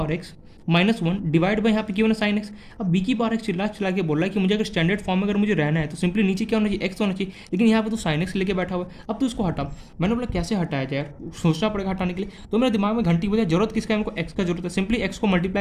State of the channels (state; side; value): identical; both; correlation 1.00